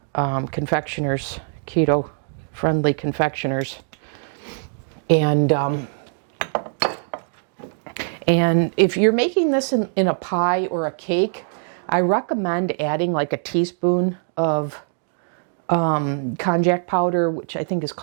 confectioners, keto-friendly confectioners. And if you're making this in a pie or a cake, I recommend adding like a teaspoon of konjac powder, which I think is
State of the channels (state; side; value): silent; left; digital silence